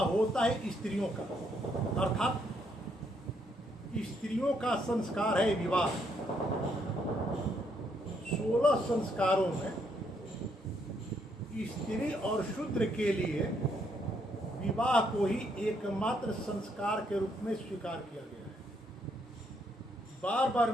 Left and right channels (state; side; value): normal; both; correlation 0.73